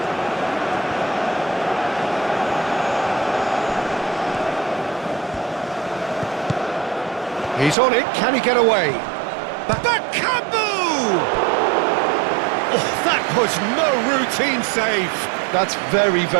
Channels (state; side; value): drops out; left; at 7.8 s